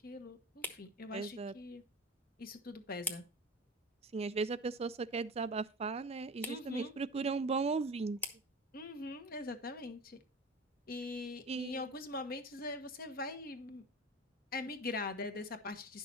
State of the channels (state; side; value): normal; both; correlation 0.33